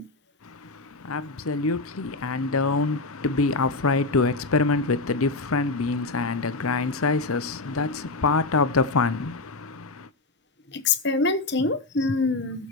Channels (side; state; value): right; quieter; 3.3 dB